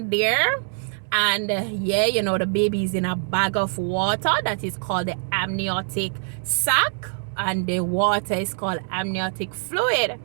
there, and the baby's in a bag of water that is called the amniotic sac, and the water is called amniotic fluid.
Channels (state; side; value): silent; left; digital silence